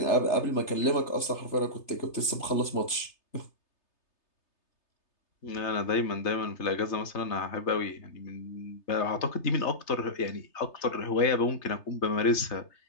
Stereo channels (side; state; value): right; late; 3.3 ms